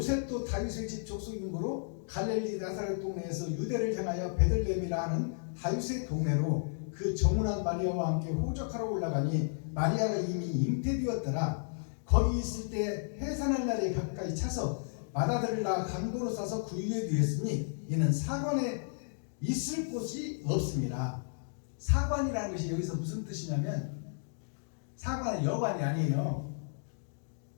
다윗의 집 족속이므로 갈릴리 나사렛 동네에서 유대를 향하여 베들레헴이라 하는 다윗의 동네로 그 정운한 마리아와 함께 호적하러 올라가니 마리아가 이미 잉태되었더라. 거기 있을 때 해산할 날에 가까이 차서 마다들을 낳아 강도로 싸서 구유에 두었으니 이는 사관에 있을 곳이 없습니다. 사관이라는 것이 여기서 무슨 뜻이냐면 사관은 여관이 아니에요.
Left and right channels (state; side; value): silent; right; digital silence